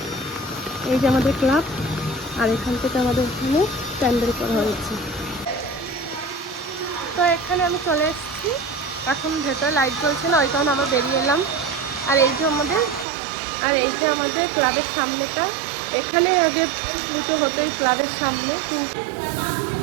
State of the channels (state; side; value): drops out; left; at 13.1 s